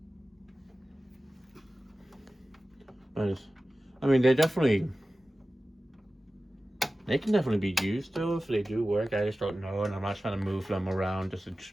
But I mean, they can definitely be used though if they do work. I just don't know, and I'm not trying to move them around just to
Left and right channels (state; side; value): normal; both; correlation 0.96